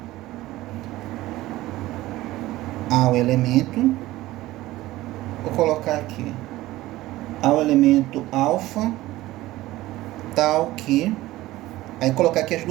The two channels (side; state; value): left; quieter; 17.0 dB